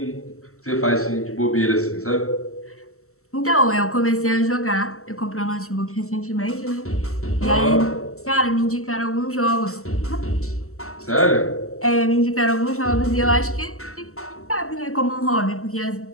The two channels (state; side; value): late; right; 0.63 ms